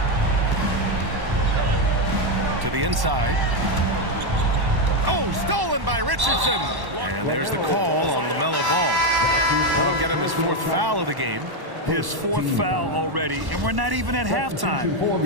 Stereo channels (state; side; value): late; left; 1.1 ms